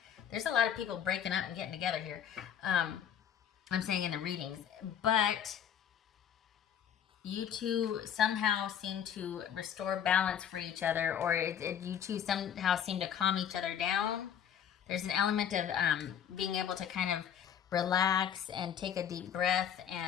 There's a lot of people breaking up and getting together here. I'm saying in the readings, but you two somehow seem to restore balance for each other, or you two somehow seem to calm each other down. There's an element of being able to kind of relax and take a deep breath,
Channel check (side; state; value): right; quieter; 8.9 dB